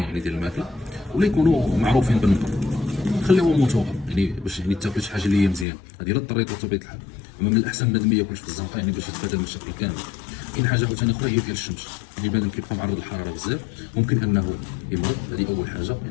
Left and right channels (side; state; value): right; drops out; at 5.7 s